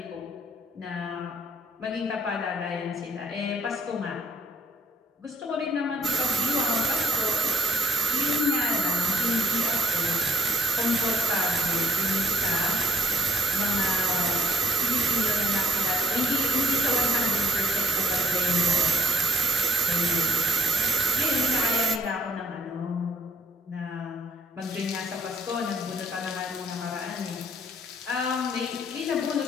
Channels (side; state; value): both; normal; correlation 0.62